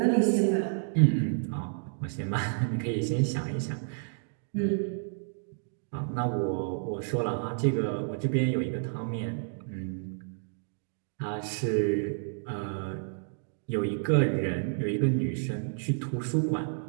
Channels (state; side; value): silent; left; digital silence